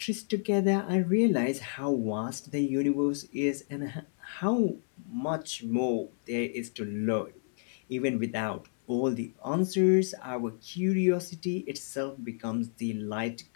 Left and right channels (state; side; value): silent; right; 58 dB below the other